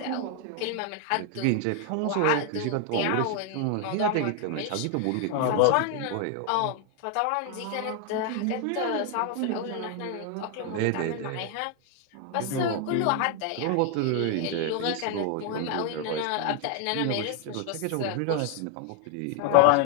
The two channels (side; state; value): both; different; correlation 0.00